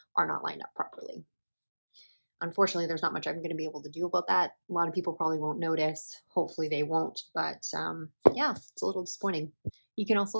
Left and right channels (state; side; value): inverted; both; correlation -1.00